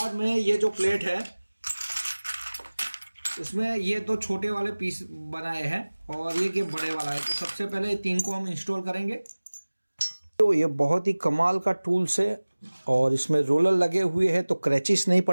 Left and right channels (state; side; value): inverted; both; correlation -1.00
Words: में ये जो प्लेट है, इसमें ये दो छोटे वाले पीस बनाए हैं और ये बड़े वाला है। तो सबसे पहले 3 को हम इंस्टॉल करेंगे। तो ये बहुत ही कमाल का टूल्स है और इसमें रोलर लगे हुए हैं, तो क्रैचेस नहीं